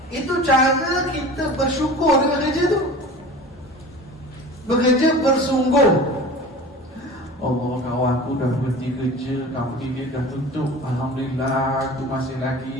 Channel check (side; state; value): both; normal; correlation 0.38